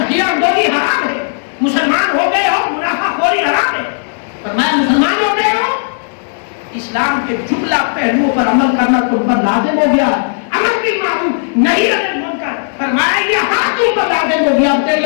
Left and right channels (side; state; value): right; silent; digital silence